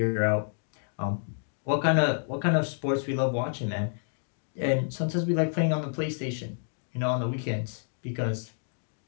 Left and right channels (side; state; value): right; silent; digital silence